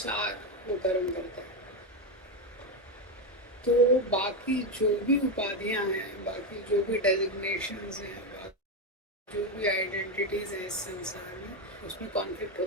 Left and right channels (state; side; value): normal; both; correlation 0.10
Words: वो कर्म करता है। तो बाकी जो भी उपाधियां हैं, बाकी जो भी डेजिग्नेशंस हैं, जो भी आइडेंटिटीज हैं इस संसार में, उसमें कॉन्फ्लिक्ट